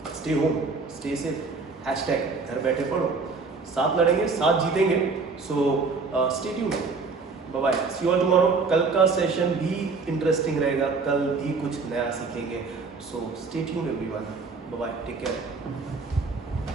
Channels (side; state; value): left; quieter; 4.3 dB